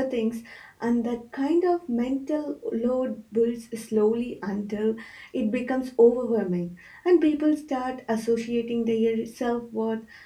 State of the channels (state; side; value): identical; both; correlation 1.00